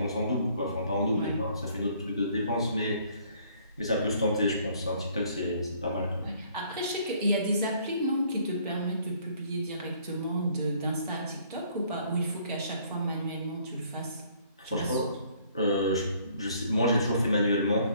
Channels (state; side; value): inverted; both; correlation -0.61